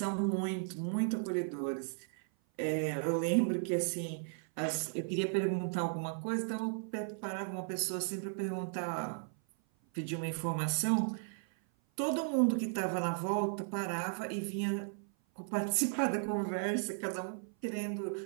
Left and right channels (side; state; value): left; silent; 54 dB below the other